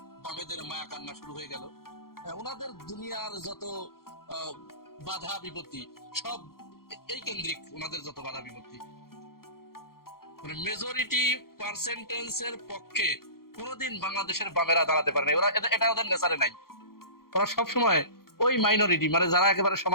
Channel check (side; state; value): right; late; 0.93 ms